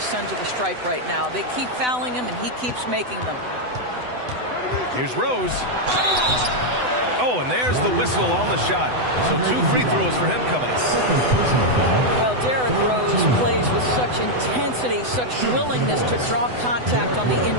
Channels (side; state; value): left; late; 8.0 ms